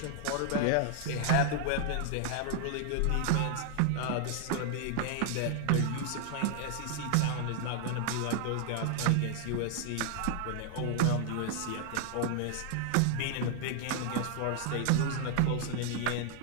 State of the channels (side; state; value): both; different; correlation 0.00